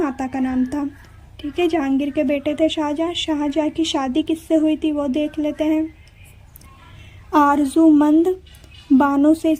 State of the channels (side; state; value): both; identical; correlation 1.00